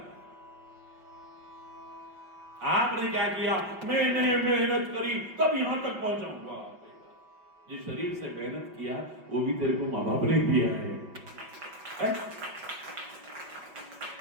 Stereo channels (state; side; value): late; left; 5.5 ms